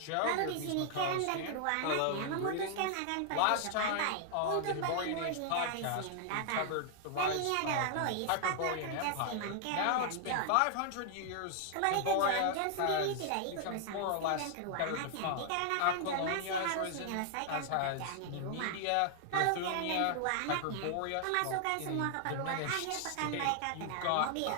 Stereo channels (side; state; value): both; different; correlation 0.00